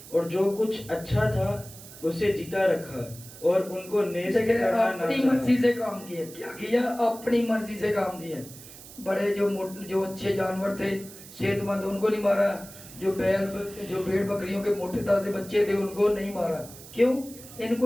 اور جو کچھ اچھا تھا اسے جیتا رکھا اور ان کو نیست دیکھیں کرنا نہ اپنی چاہا۔ مرضی سے کام کیا، کیا کیا؟ اپنی مرضی سے کام کیا۔ بڑے جو اچھے جانور تھے، صحت مند، ان کو نہیں مارا۔ جو بھیڑ بکریوں کے موٹے تازے بچے تھے ان کو نہیں مارا۔ کیوں؟ ان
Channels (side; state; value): right; noise; hiss, 17 dB below the sound